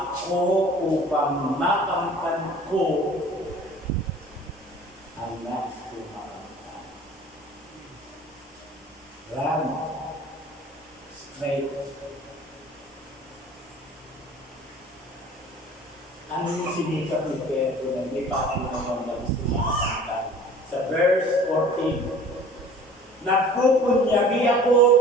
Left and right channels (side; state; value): both; normal; correlation 0.46